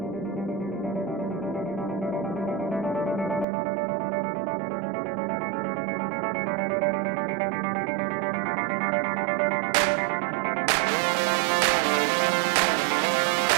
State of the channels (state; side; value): drops out; left; at 3.5 s